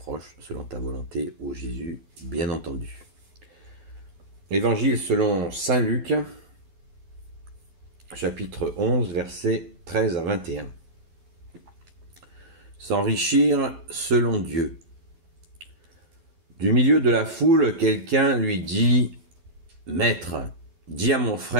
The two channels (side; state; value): left; late; 12 ms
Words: selon ta volonté, ô Jésus, bien entendu. Évangile selon Saint Luc, chapitre 11, versets 13 à 21. S'enrichir selon Dieu. Du milieu de la foule, quelqu'un lui dit « Maître, dis à mon